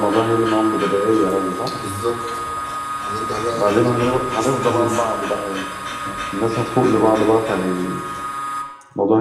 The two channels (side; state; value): both; identical; correlation 1.00